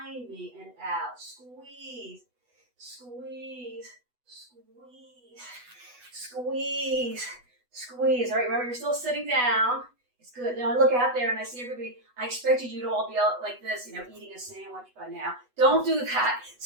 me and out. Squeeze, squeeze, squeeze, squeeze, squeeze. All right, remember you're still sitting down. It's good. Now I look out there and I see everybody. I expected you to all be out like this, eating a sandwich by now. Don't do that.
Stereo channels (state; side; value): late; left; 8.1 ms